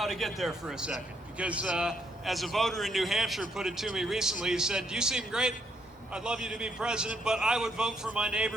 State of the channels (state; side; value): normal; both; correlation 0.74